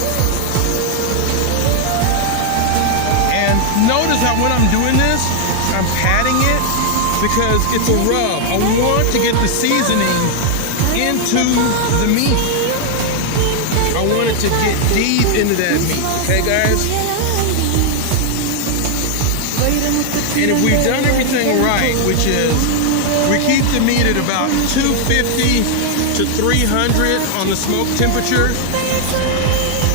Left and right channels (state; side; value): different; both; correlation 0.00